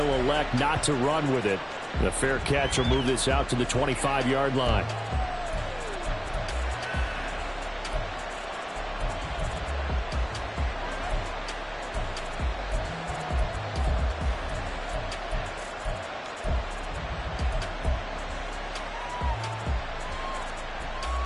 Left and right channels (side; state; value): both; identical; correlation 1.00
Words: elect not to run with it. The fair catch will move this out to the 25-yard line.